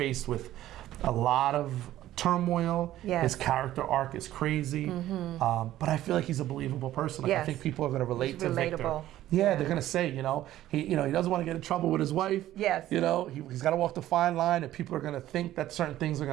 with a lot of turmoil. Yes. His character arc is crazy, but I feel like he's a believable person. Like, Yes. I think people are going to relate He's to Victor. relatable. Yeah, they're going to say, you know, he doesn't want to get in trouble with his wife. Yes. You know, he's got to walk the fine line, and people are going to think that certain things are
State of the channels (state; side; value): quieter; left; 13.8 dB